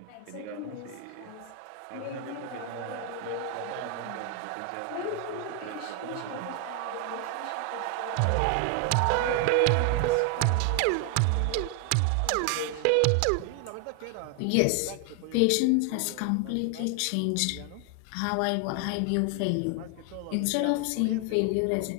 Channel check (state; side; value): different; both; correlation 0.00